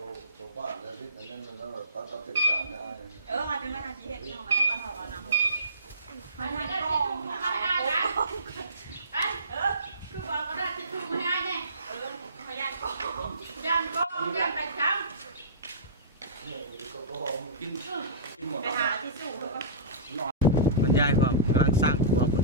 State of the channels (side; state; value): both; inverted; correlation -0.33